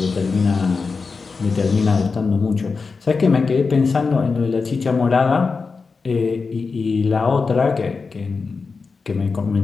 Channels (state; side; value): quieter; right; 4.6 dB